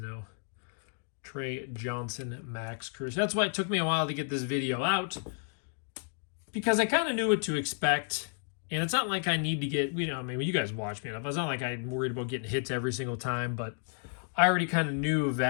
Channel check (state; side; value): silent; right; 57 dB below the other